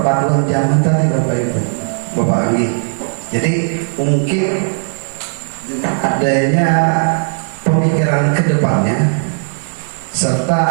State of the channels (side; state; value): left; silent; 62 dB below the other